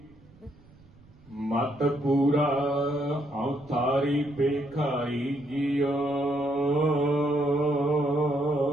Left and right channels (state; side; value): noise; right; rumble, 25 dB below the sound